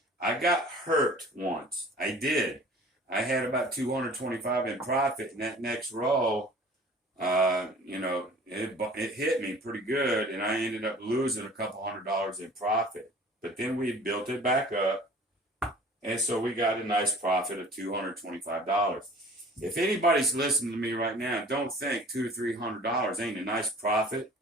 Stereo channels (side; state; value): both; normal; correlation 0.47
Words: I got hurt once. I did. I had about 225 in profit, and that next roll, it hit me pretty good, and I ended up losing a couple $100 in profit. But then we built it back up, and so we got a nice profit of $225. If anybody's listening to me right now, don't think $200 or $300 ain't a nice profit